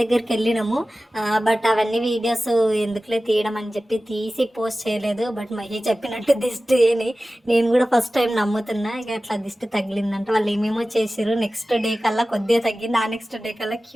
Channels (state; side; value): normal; both; correlation 0.96